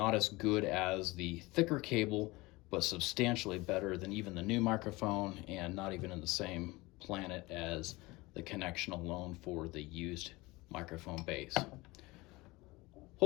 as good as the thicker cable, but substantially better than even the new microphone, and not even in the same planet as the connection alone for the used microphone base.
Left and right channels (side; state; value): right; quieter; 22.0 dB